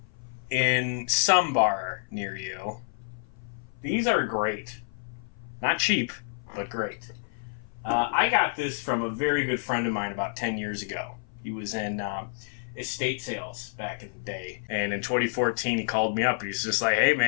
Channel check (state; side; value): silent; right; 56 dB below the other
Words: in some bar near you. These are great. Not cheap, but great. I got this from a very good friend of mine about 10 years ago. He was in estate sales back in the day. And in 2014, he called me up. He was just like, hey,